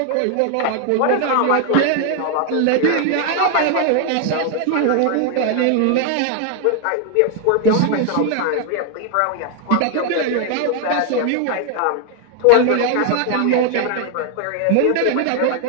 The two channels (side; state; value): both; different; correlation 0.00